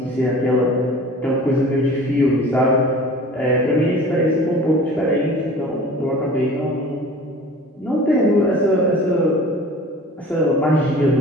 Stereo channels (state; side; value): normal; both; correlation 0.43